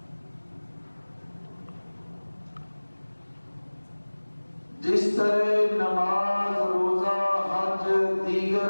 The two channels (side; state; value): both; inverted; correlation -1.00